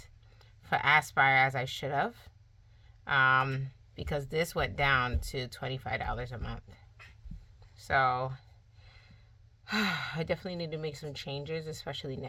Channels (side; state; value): both; identical; correlation 1.00